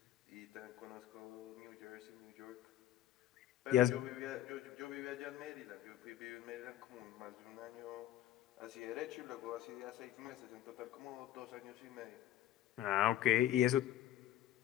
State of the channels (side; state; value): right; quieter; 12.8 dB